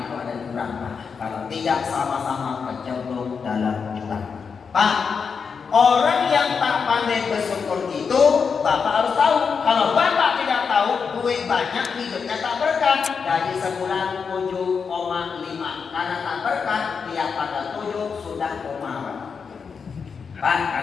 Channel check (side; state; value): right; quieter; 5.8 dB